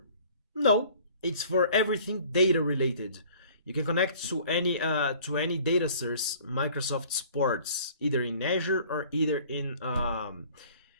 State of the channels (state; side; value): inverted; both; correlation -0.51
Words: No, it's for everything data related. You can connect to any data source Microsoft supports, either in Azure or either in